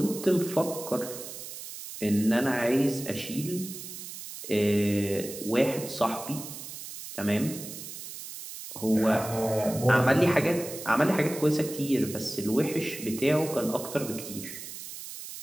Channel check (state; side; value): noise; right; hiss, 11 dB below the sound